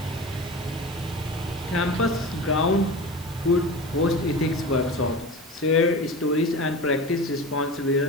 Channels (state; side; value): normal; both; correlation 0.31